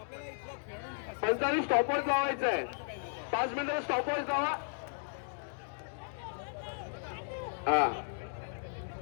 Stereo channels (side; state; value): right; silent; digital silence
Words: 45 स्टॉपवॉच लावायचं आहे. 5 मिनिटं स्टॉपवॉच लावा.